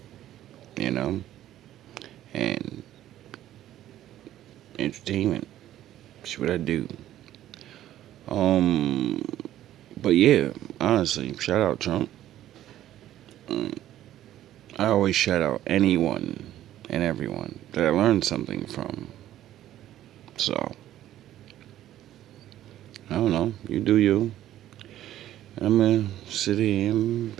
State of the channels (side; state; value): left; quieter; 12.9 dB